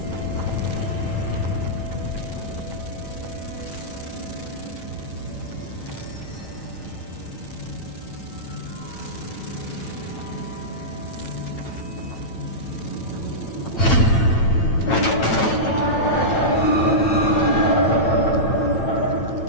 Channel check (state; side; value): late; right; 9.0 ms